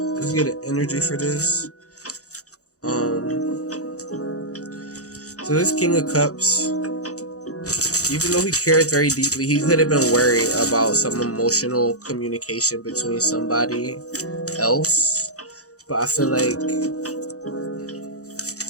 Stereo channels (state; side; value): late; right; 0.66 ms